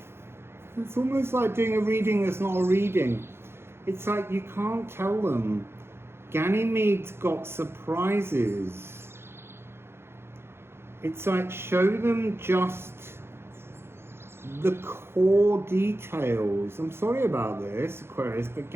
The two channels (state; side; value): late; left; 0.12 ms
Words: it's almost like doing a reading that's not a reading. It's like you can't tell them. Ganymede's got surprises. It's like show them just the core details. I'm sorry about this, Aquarius, but